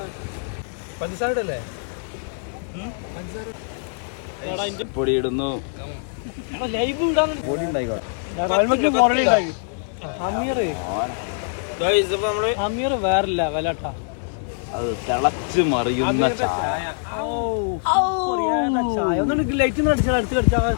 പഞ്ചസാര അല്ലേ പൊടി ഇടുന്നു വേറില്ല വിലട്ട അത് തിളച്ച് മറിയുന്ന ചായ. ലൈറ്റ് അടിച്ചാൽ അടുത്ത്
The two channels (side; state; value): right; silent; digital silence